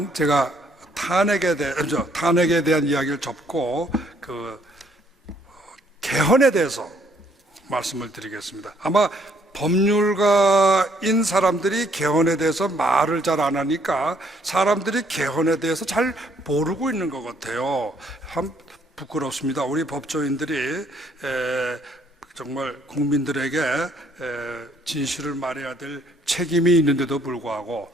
제가 탄핵에 대한 이야기를 접고 개헌에 대해서 말씀을 드리겠습니다. 아마 법률가인 사람들이 개헌에 대해서 말을 잘 안 하니까 사람들이 개헌에 대해서 잘 모르고 있는 것 같아요. 참 부끄럽습니다. 우리 법조인들이 정말 국민들에게 진실을 말해야 될 책임이 있는데도 불구하고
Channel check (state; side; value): normal; both; correlation 0.66